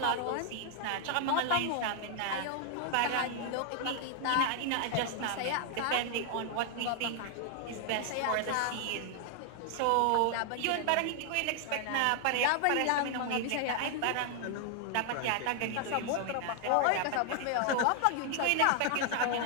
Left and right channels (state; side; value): different; both; correlation 0.00